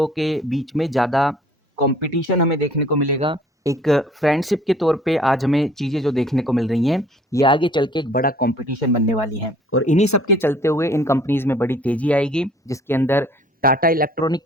के बीच में ज़्यादा कंपटीशन हमें देखने को मिलेगा। एक फ्रेंडशिप के तौर पे आज हमें चीज़ें जो देखने को मिल रही हैं, ये आगे चल के एक बड़ा कंपटीशन बनने वाली हैं। और इन्हीं सब के चलते हुए इन कंपनीज में बड़ी तेजी आएगी, जिसके अंदर टाटा इलेक्ट्रॉनिक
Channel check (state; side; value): normal; both; correlation 0.55